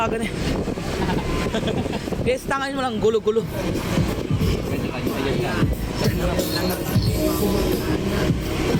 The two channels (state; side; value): identical; both; correlation 1.00